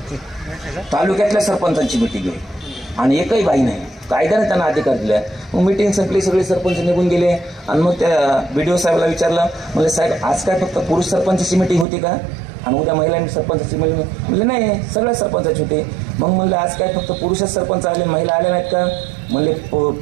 तालुक्यातल्या सरपंचांची मीटिंग आहे आणि एकही बाई नाही. कायद्याने त्यांना अधिकार दिला. मग मीटिंग संपली, सगळे सरपंच निघून गेले, आणि मग त्या BDO साहेबाला विचारलं, म्हणजे साहेब आज काय फक्त पुरुष सरपंचाची मीटिंग होती का, आणि उद्या महिला सरपंचाची मीटिंग? म्हणजे नाही, सगळ्या सरपंचाची होती. मग म्हणलं आज काय फक्त पुरुषच सरपंच आले, महिला आल्या नाहीत का? म्हणले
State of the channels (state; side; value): drops out; left; at 11.9 s